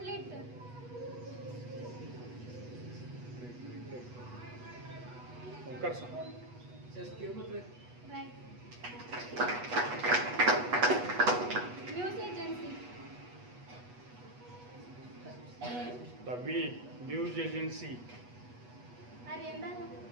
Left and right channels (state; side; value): late; left; 8.2 ms